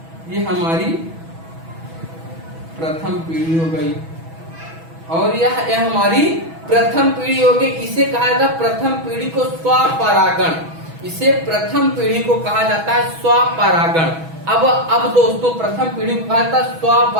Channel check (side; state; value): left; late; 6.1 ms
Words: ये हमारी प्रथम पीढ़ी हो गई और यह हमारी प्रथम पीढ़ी हो गई। इसे कहा जाता है प्रथम पीढ़ी को स्वपरागण। इसे प्रथम पीढ़ी को कहा जाता है स्वपरागण। अब दोस्तों प्रथम पीढ़ी को कहा जाता है